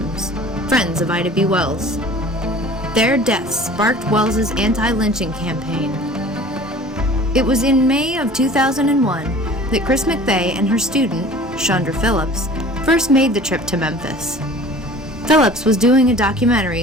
friends of Ida B. Wells. Their deaths sparked Wells's anti-lynching campaign. It was in May of 2001 that Chris McVay and her student, Chandra Phillips, first made the trip to Memphis. Phillips was doing a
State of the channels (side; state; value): both; normal; correlation 0.45